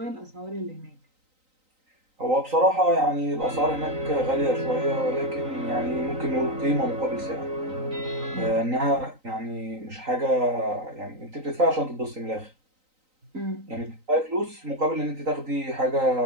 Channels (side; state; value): left; late; 3.9 ms